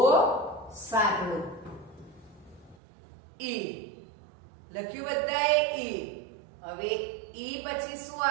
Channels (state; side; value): drops out; left; at 2.8 s